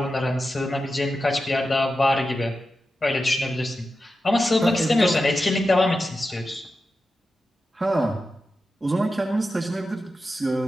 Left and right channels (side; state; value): both; normal; correlation 0.91